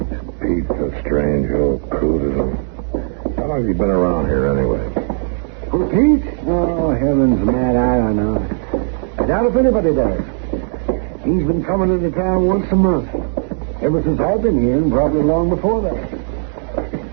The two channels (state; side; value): quieter; left; 39.6 dB